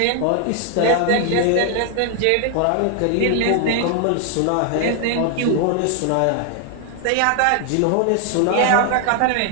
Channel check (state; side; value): different; both; correlation 0.00